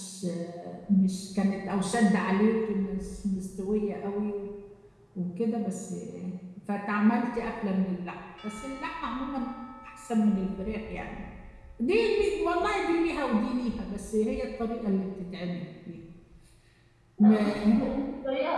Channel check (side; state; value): both; identical; correlation 1.00